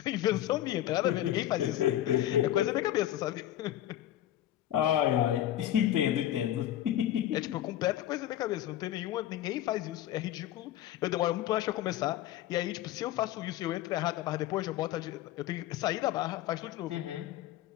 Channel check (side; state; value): right; quieter; 12.8 dB